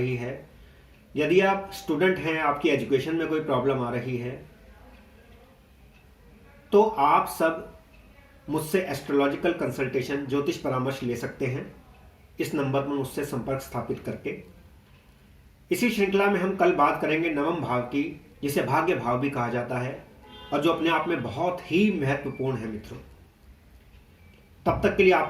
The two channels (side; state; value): both; identical; correlation 1.00